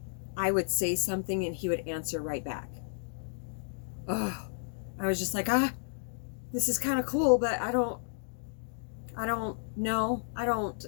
I would say something and he would answer right back. Oh, I was just like, this is kind of cool, but I don't know. I don't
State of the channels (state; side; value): silent; right; digital silence